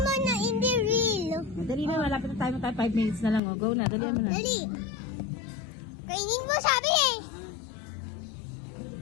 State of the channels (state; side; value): drops out; right; at 3.4 s